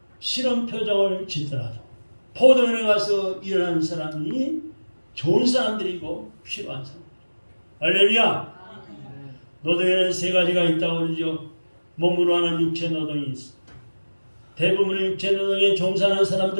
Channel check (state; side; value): inverted; both; correlation -1.00